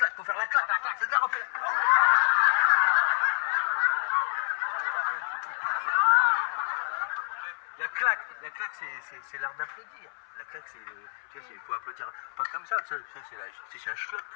faut faire la claque, c'est ça, refais la... La claque, c'est l'art d'applaudir. La claque, c'est le... Tu vois, il faut applaudir pas comme ça, c'est un schlock.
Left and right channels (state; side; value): silent; right; 59 dB below the other